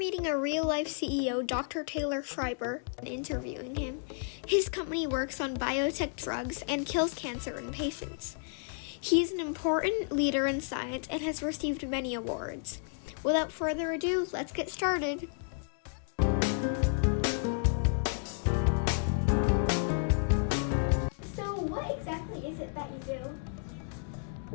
a real-life CEO, Dr. Taylor Schreiber, and interviewing him. His company works on biotech drugs and kills cancer in patients. He's an important leader in science and has received many awards. Without further ado, let's get started. So what exactly is it that you do?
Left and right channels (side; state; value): right; silent; 56 dB below the other